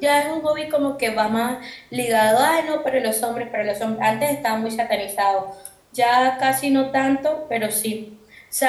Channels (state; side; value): identical; both; correlation 1.00